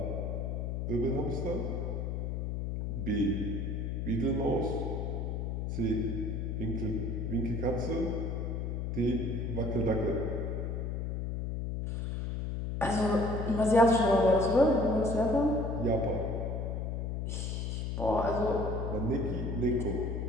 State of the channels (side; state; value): left; noise; hum, 2 dB below the sound